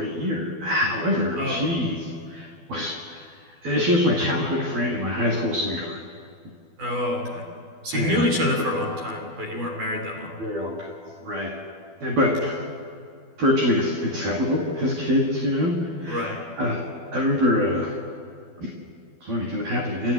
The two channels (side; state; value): left; late; 12 ms